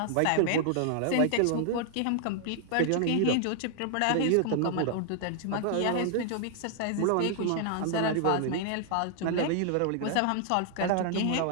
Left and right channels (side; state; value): both; different; correlation 0.00